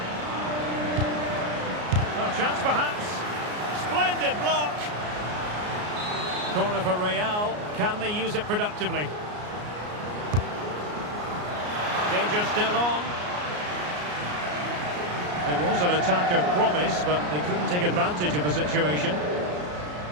Chance perhaps. Splendid block. Corner for Real. Can they use it productively? Danger still on. It was an attack of promise, but they couldn't take advantage of the situation.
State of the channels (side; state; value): left; late; 33 ms